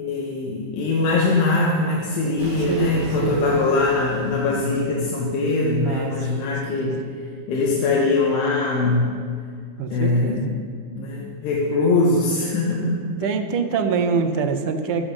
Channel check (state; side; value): late; right; 15 ms